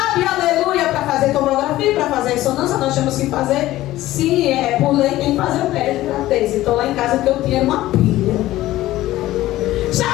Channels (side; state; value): right; quieter; 15.7 dB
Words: aleluia, para fazer tomografia, para fazer ressonância, nós temos que fazer, se é por lei, tem que fazer o teste de gravidez. Então lá em casa que eu tinha uma pilha. Só